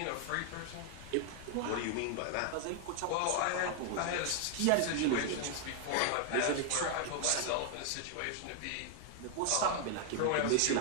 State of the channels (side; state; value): both; different; correlation 0.00